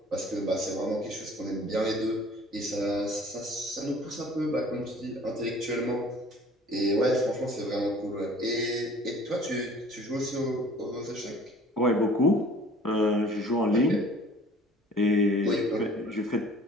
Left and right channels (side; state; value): both; normal; correlation 0.50